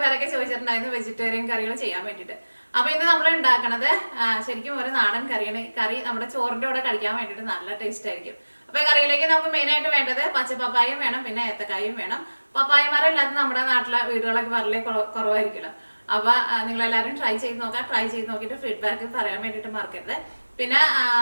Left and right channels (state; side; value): inverted; both; correlation -1.00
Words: പേരൊക്കെ ചോദിച്ചിട്ടുണ്ടായിരുന്നു വെജിറ്റേറിയൻ കറികൾ ചെയ്യാൻ വേണ്ടിയിട്ട്. അപ്പൊ ഇന്ന് നമ്മൾ ഉണ്ടാക്കണത് ശരിക്കും ഒരു നാടൻ കറിയാണ്. കറി നമ്മുടെ ചോറിന്റെ കൂടെ കഴിക്കാൻ വേണ്ടിയിട്ട് നല്ല ടേസ്റ്റ് ആയിരിക്കും. അപ്പൊ കറിയിലേക്ക് നമുക്ക് മെയിൻ ആയിട്ട് വേണ്ടത് പച്ചപ്പപ്പായും വേണം, പിന്നെ ഏത്തക്കായും വേണം. പപ്പായ മരം ഇല്ലാത്ത നമ്മുടെ നാട്ടിലെ വീടുകളൊക്കെ വളരെ കുറവായിരിക്കുമല്ലോ. അപ്പൊ നിങ്ങൾ എല്ലാവരും ട്രൈ ചെയ്ത് നോക്കാം. ട്രൈ ചെയ്ത് നോക്കിയിട്ട് ഫീഡ്ബാക്ക് പറയാൻ വേണ്ടിയിട്ട് മറക്കരുത്. പിന്നെ